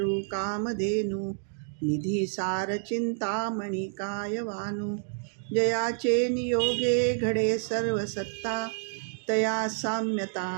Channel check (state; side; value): silent; left; digital silence